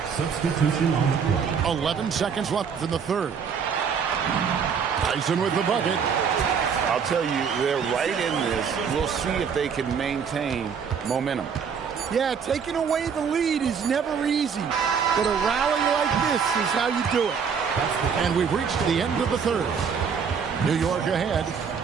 Substitution on the court. 11 seconds left in the third. Tyson with the bucket. I'll tell you, they're right in this. We'll see if they can maintain momentum. Yeah, taking away the lead is never easy, but a rally like this is how you do it. And we've reached the end of the third. New York ahead,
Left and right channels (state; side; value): quieter; left; 6.6 dB